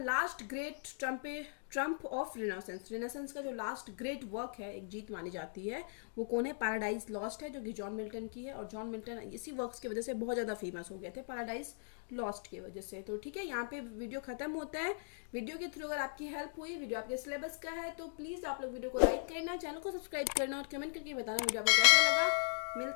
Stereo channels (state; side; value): silent; right; digital silence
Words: great trump of Renaissance. Renaissance का जो लास्ट ग्रेट वर्क है, एक जीत मानी जाती है, वो कौन है, पैराडाइज लॉस्ट है, जो कि जॉन मिल्टन की है. और जॉन मिल्टन इसी वर्क्स की वजह से बहुत ज़्यादा फेमस हो गए थे, पैराडाइज लॉस्ट की वजह से. तो ठीक है, यहाँ पे वीडियो खत्म होता है. वीडियो के थ्रू अगर आपकी हेल्प हुई, वीडियो आपके सिलेबस का है, तो प्लीज़ आप लोग वीडियो को लाइक करना, चैनल को सब्सक्राइब करना और कमेंट करके बताना वीडियो आपको कैसा लगा.